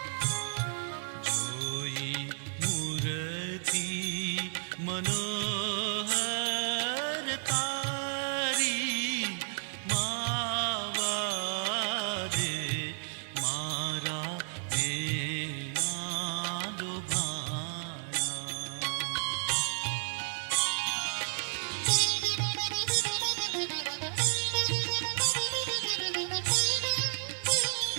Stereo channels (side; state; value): left; silent; digital silence